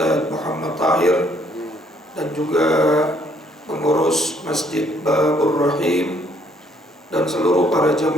Muhammad Tahir, dan juga pengurus Masjid Babur Rahim, dan seluruh para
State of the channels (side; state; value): both; normal; correlation 0.66